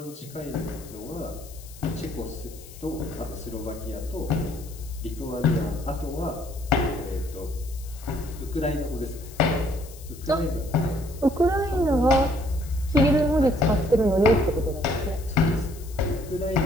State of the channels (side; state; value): left; noise; hiss, 19 dB below the sound